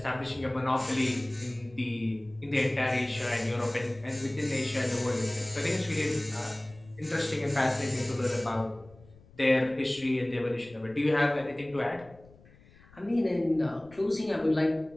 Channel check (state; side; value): noise; left; rumble, 25 dB below the sound